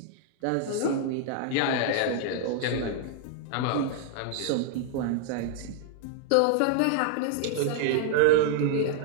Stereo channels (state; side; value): different; both; correlation -0.01